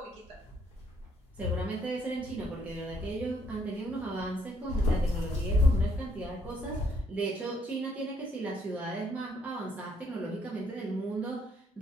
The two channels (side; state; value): both; normal; correlation 0.69